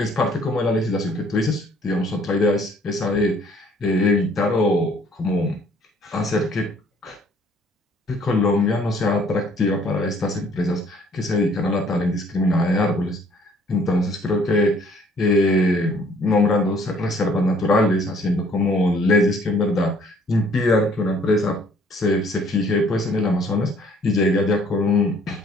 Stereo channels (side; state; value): both; normal; correlation 0.59